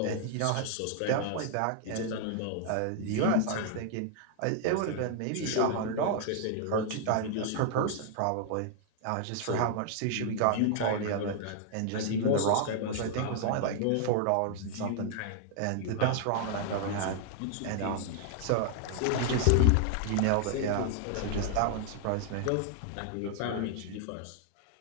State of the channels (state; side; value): different; both; correlation 0.00